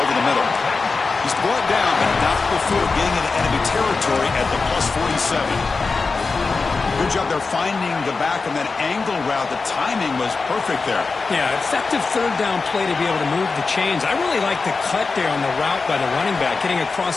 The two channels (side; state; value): right; quieter; 4.3 dB